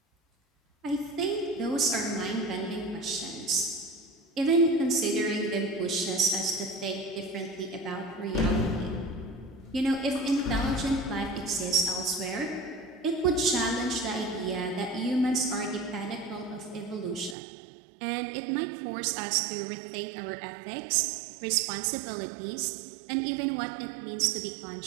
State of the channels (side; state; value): left; drops out; at 17.4 s